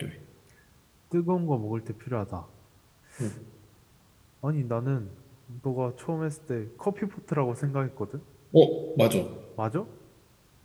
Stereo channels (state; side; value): identical; both; correlation 1.00